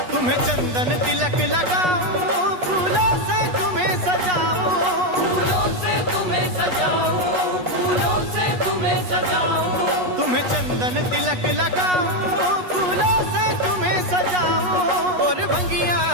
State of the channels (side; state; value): left; late; 8.2 ms